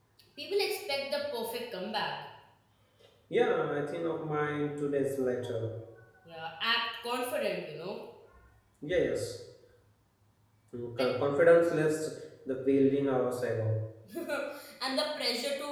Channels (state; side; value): identical; both; correlation 1.00